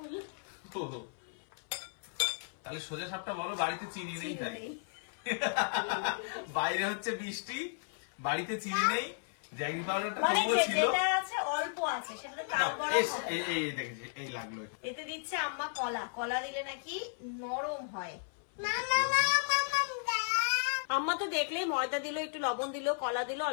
তাহলে সোজা সাপটা বলো, বাড়িতে চিনি নেই তাই। বাইরে হচ্ছে বৃষ্টি, বাড়িতে চিনি নেই, জ্যাগরি পাউডারটা মানে তবুও ছিল। যেটা আছে অল্প আছে, সেটা তাল বড়া হবে। এই দেখেছি, এই লাগলো। এতে দিচ্ছে আম্মা কলা। কলা দিলে নাকি নরম হয়। আম্মা তো দেখলেই ময়দা দিল, একটু লবণ দিল, কলা দিল,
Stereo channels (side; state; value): right; silent; 55 dB below the other